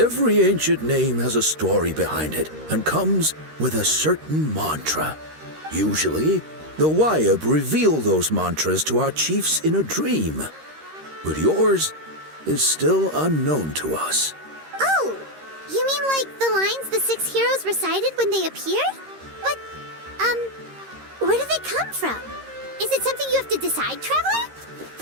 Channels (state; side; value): late; left; 13 ms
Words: ancient name has a story behind it and comes with a certain mantra. Usually, the Wayab reveal those mantras to our chiefs in a dream. But yours is still unknown to us. Oh, you mean like the lines the 6 heroes recited when they appeared? But, where do they come from? Is it something you have to decide, Traveler?